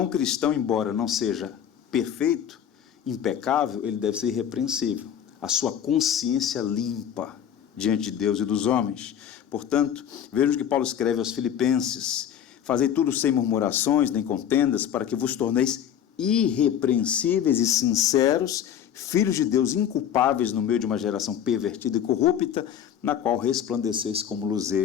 o cristão, embora não seja perfeito, impecável, ele deve ser irrepreensível. A sua consciência limpa diante de Deus e dos homens. Portanto, vejam que Paulo escreve aos Filipenses: fazei tudo sem murmurações nem contendas, para que vos torneis irrepreensíveis e sinceros, filhos de Deus inculpáveis no meio de uma geração pervertida e corrupta, na qual resplandeceis como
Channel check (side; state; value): right; quieter; 9.4 dB